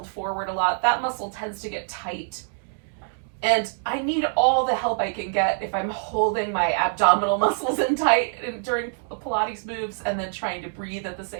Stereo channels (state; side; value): silent; left; digital silence